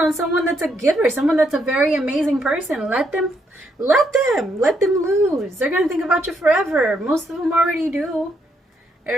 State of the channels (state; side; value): normal; both; correlation 0.75